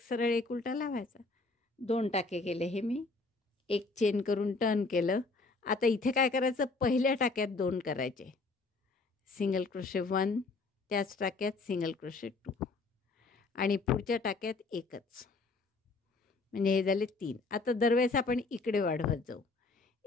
सरळ एक उलटा लावायचा. 2 टाके केले हे मी. एक चेन करून टर्न केलं. आता इथे काय करायचं, पहिल्या टाक्यात 2 करायचे. सिंगल क्रोशे 1, त्याच टाक्यात सिंगल क्रोशे 2 आणि पुढच्या टाक्यात एकच. म्हणजे हे झाले 3. आता दरवेळेस आपण इकडे वाढवत जाऊ.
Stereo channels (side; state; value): right; quieter; 3.7 dB